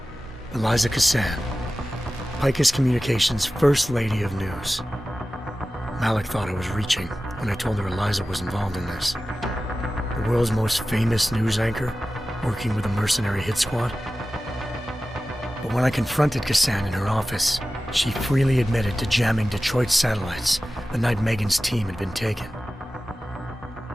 𝘼𝙗𝙘𝙀, 𝘼𝙗𝙘𝙀 Communications' First Lady of News. Malik thought I was reaching when I told her Eliza was involved in this. The world's most famous news anchor, working with a mercenary hit squad. But when I confronted Kassan in her office, she freely admitted to jamming Detroit's satellites the night Megan's team had been taken.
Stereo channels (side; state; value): both; normal; correlation 0.95